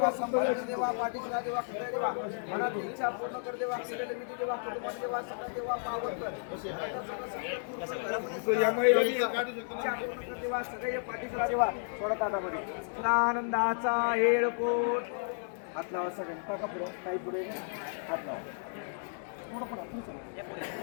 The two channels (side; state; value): right; silent; digital silence